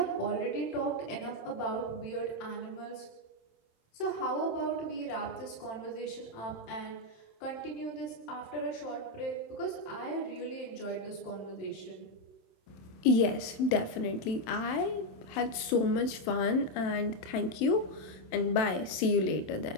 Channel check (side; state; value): right; late; 27 ms